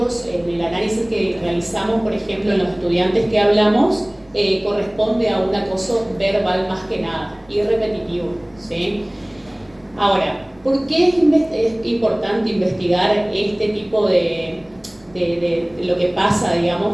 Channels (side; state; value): right; noise; rumble, 30 dB below the sound